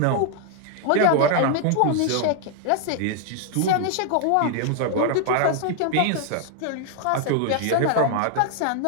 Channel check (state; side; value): different; both; correlation 0.00